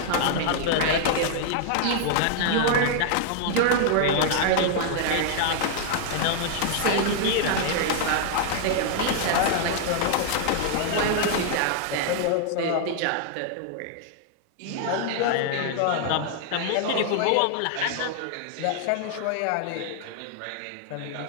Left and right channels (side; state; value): both; different; correlation 0.00